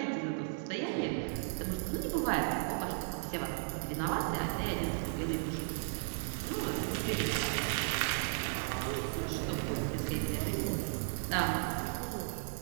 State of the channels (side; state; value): left; silent; digital silence